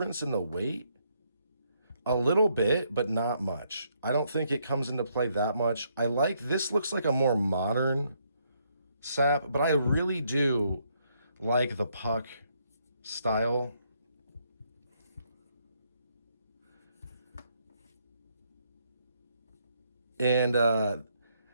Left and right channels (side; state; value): both; inverted; correlation -0.73